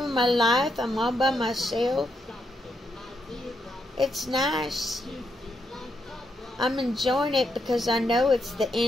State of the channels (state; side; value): normal; both; correlation 0.80